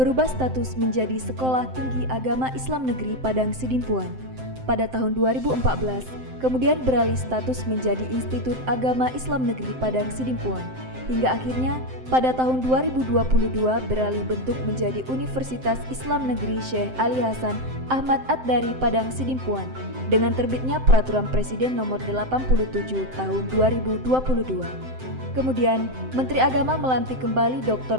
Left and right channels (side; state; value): left; late; 7.7 ms